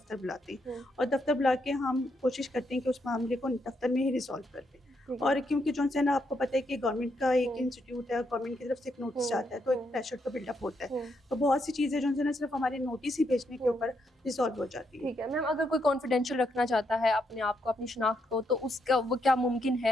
بلاتے ہیں، اور دفتر بلا کے ہم کوشش کرتے ہیں کہ اس معاملے کو دفتر میں ہی ریزالو کر دیں. اور کیونکہ جو ہے نا آپ کو پتہ ہے کہ گورنمنٹ کا ایک انسٹیٹیوٹ ہے، گورنمنٹ کی طرف سے ایک نوٹس جاتا ہے تو ایک پریشر تو بلڈ اپ ہوتا ہے، تو بہت سی چیزیں جو ہے نا صرف ہمارے نوٹس ہی بھیجنے کے اوپر ریزالو ہو جاتی ہیں. ٹھیک ہے. میم اگر کوئی کانفیڈینشیل رکھنا چاہتا ہے اپنے آپ کو، اپنی شناخت کو، تو اس کا وہ کیا ممکن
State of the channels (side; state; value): both; normal; correlation 0.78